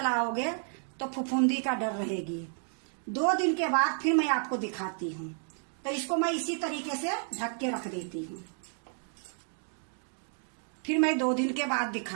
तो फफूंदी का डर रहेगी। 2 दिन के बाद फिर मैं आपको दिखाती हूँ। तो इसको मैं इसी तरीके से ढक के रख देती हूँ। फिर मैं 2 दिन के बाद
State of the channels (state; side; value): silent; left; 57 dB below the other